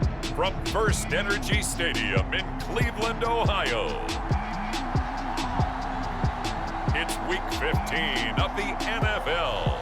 From First Energy Stadium in Cleveland, Ohio, it's week 15 of the NFL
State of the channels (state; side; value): identical; both; correlation 1.00